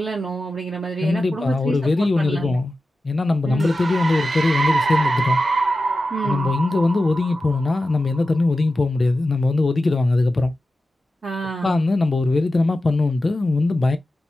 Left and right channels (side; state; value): both; normal; correlation 0.93